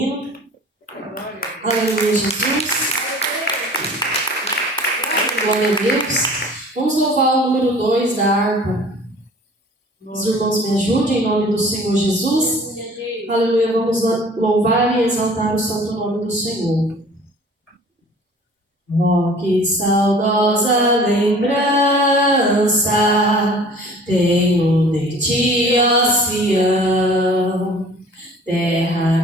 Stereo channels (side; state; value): both; normal; correlation 0.47